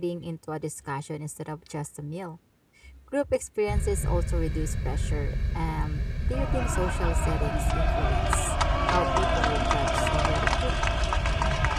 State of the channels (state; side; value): identical; both; correlation 1.00